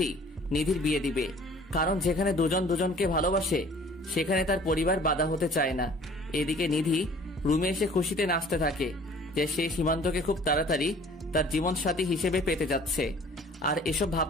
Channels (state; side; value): normal; both; correlation 0.51